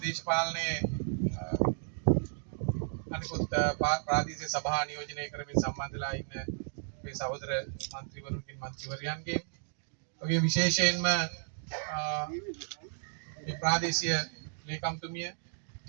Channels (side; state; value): left; silent; digital silence